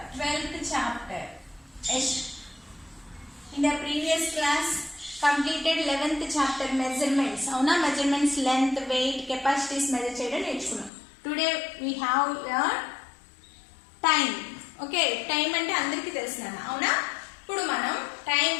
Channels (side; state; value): right; drops out; at 10.9 s